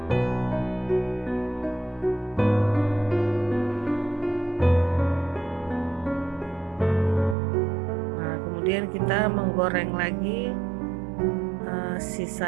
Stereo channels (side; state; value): left; drops out; at 7.4 s